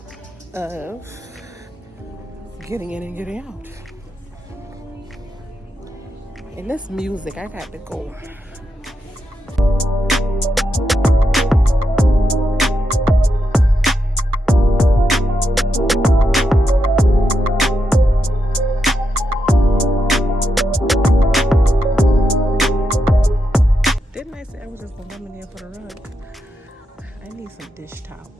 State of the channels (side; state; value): both; normal; correlation 0.85